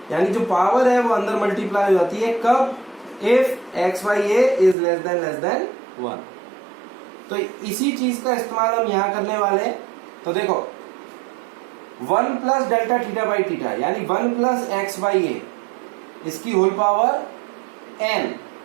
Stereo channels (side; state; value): left; drops out; at 4.8 s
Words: यानी जो पावर है वो अंदर मल्टीप्लाई हो जाती है कब, if x by A is less than 1। तो इसी चीज का इस्तेमाल हम यहां करने वाले हैं। तो देखो 1 plus delta theta by theta यानी 1 प्लस एक्स बाई ए, इसकी होल पावर n,